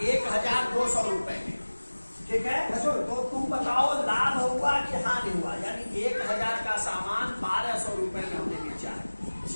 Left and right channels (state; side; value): inverted; both; correlation -1.00